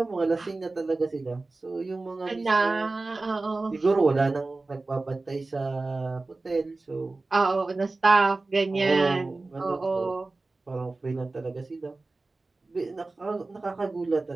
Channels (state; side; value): quieter; left; 3.4 dB